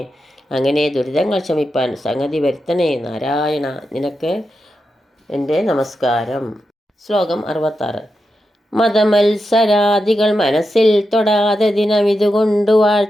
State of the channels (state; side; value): normal; both; correlation 0.88